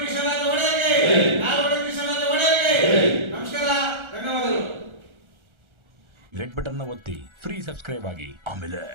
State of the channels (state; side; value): late; left; 1.4 ms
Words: ಕೃಷ್ಣರಾಜ ಒಡೆಯರಿಗೆ, ನಾಲ್ವಡಿ ಕೃಷ್ಣರಾಜ ಒಡೆಯರಿಗೆ ನಮಸ್ಕಾರ, ಧನ್ಯವಾದಗಳು. ರೆಡ್ ಬಟನ್ ನ ಒತ್ತಿ ಫ್ರೀ ಸಬ್ಸ್ಕ್ರೈಬ್ ಆಗಿ, ಆಮೇಲೆ